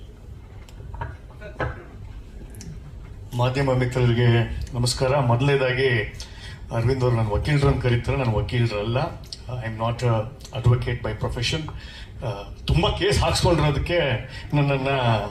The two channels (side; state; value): both; identical; correlation 1.00